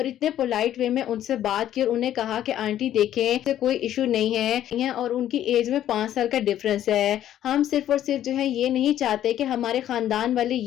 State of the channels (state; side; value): quieter; right; 11.7 dB